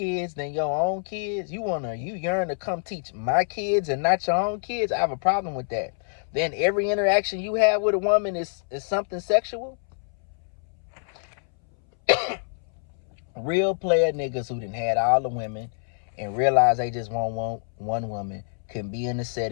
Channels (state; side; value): silent; right; 61 dB below the other